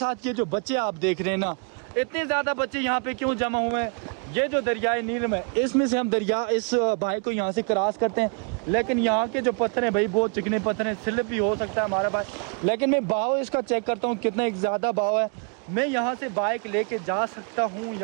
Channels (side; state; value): left; quieter; 38.3 dB